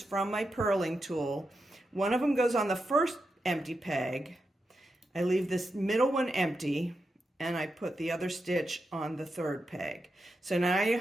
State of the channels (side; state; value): both; normal; correlation 0.87